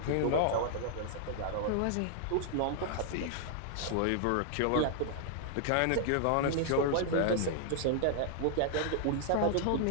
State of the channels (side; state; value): both; different; correlation -0.01